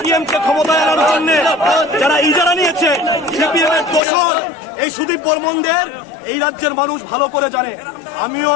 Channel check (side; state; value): right; drops out; at 4.0 s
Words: কে ক্ষমতায় আনার জন্য যারা ইজারা নিয়েছে, সিপিএম এর দোষর এই সুদীপ বর্মনদের এই রাজ্যের মানুষ ভালো করে জানে। আমিও